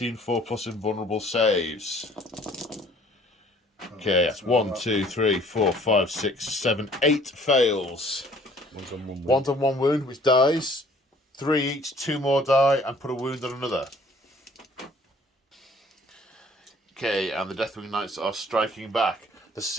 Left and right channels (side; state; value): both; normal; correlation 0.55